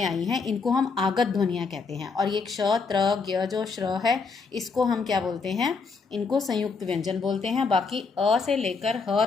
आई हैं, इनको हम आगत ध्वनियाँ कहते हैं। और ये क्ष त्र ज्ञ जो श्र है इसको हम क्या बोलते हैं? इनको संयुक्त व्यंजन बोलते हैं। बाकी अ से लेकर ह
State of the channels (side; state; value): right; quieter; 4.7 dB